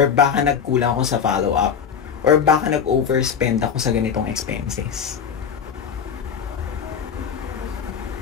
baka nagkulang ako sa follow-up, or baka nag-overspend ako sa ganitong expenses.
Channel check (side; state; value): right; quieter; 7.3 dB